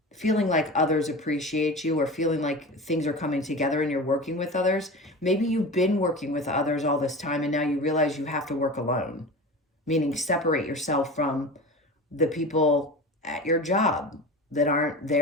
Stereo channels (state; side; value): normal; both; correlation 0.31